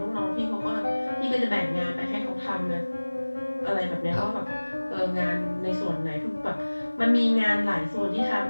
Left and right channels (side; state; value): both; inverted; correlation -1.00